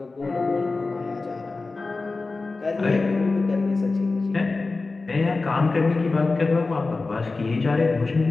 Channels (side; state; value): right; quieter; 3.7 dB